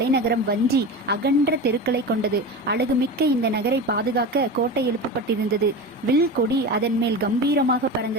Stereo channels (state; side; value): normal; both; correlation 0.27